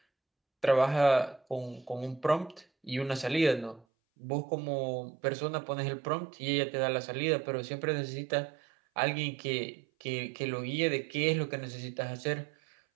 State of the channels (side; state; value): left; drops out; at 3.9 s